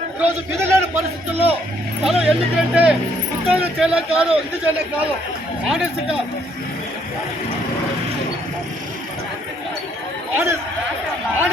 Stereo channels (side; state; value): both; normal; correlation 0.68